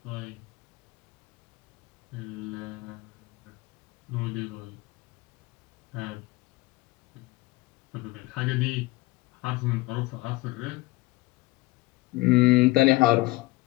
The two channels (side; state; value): right; quieter; 20.6 dB